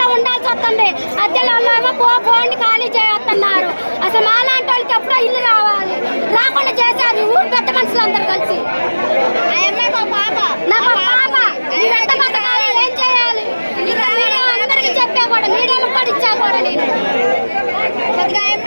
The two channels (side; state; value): both; inverted; correlation -1.00